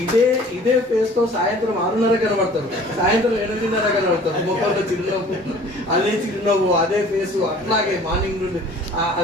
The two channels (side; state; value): both; normal; correlation 0.50